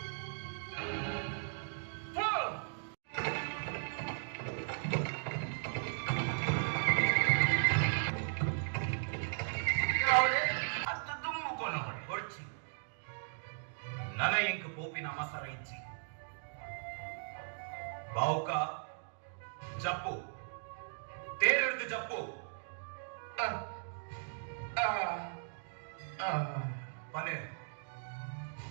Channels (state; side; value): silent; left; digital silence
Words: ನನ ಇಂಕ್ ಪೋಪಿನ ಮಸರ ಇಚ್ಚಿ ಬಾವುಕ ಜಪ್ಪು ತೇರೆಡ್ದು ಜಪ್ಪು ಪನೆ